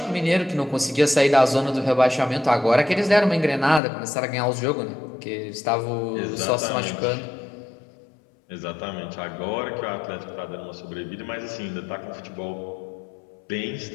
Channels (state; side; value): drops out; right; at 3.8 s